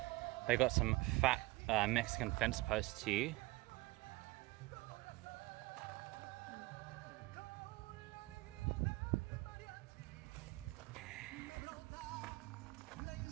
They got some fat Mexican fence posts here.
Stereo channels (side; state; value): left; quieter; 20.9 dB